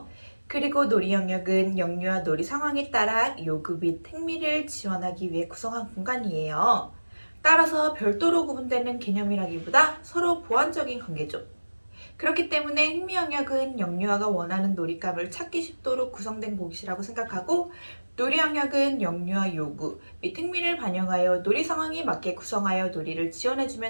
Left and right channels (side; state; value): both; inverted; correlation -1.00